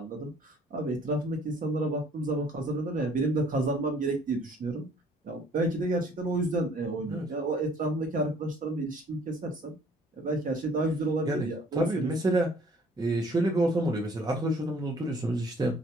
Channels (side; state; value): both; normal; correlation 0.57